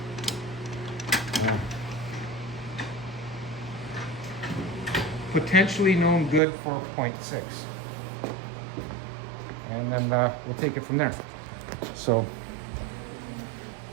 potentially known good 4.6. And then we'll take it from there. So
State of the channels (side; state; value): left; drops out; at 6.4 s